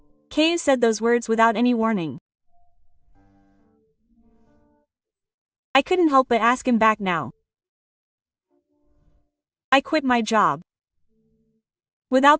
Kei said those words without any warning. I couldn't help but ask him back now. I quit my job. Without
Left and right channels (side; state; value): both; identical; correlation 1.00